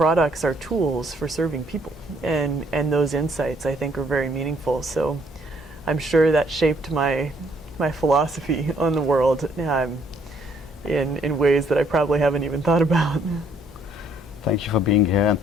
are tools for serving people, and those insights, I think, are very meaningful. So I'm sure that shaped my philosophy on the world in ways that I probably haven't even thought about. Thank you for being here, and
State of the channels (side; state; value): both; normal; correlation 0.66